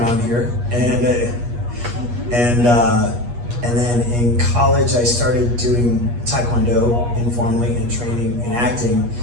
here, and then in college I started doing Taekwondo informally and training in acting.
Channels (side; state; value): left; late; 8.4 ms